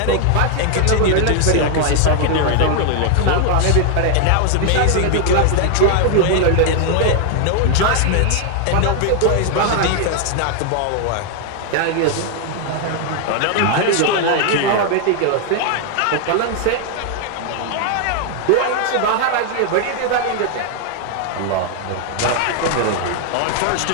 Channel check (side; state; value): both; different; correlation 0.00